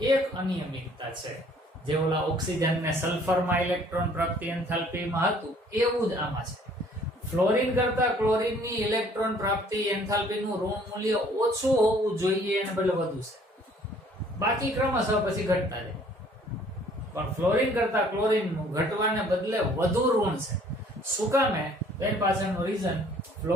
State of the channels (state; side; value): normal; both; correlation 0.58